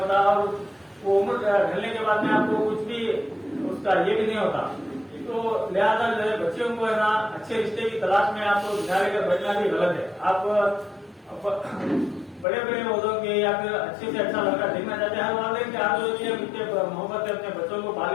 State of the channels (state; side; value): drops out; right; at 12.5 s